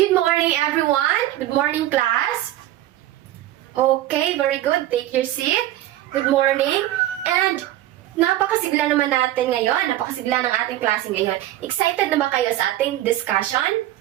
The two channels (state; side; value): quieter; left; 14.3 dB